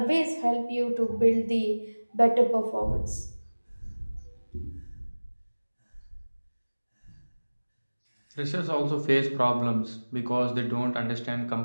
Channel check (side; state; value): both; inverted; correlation -1.00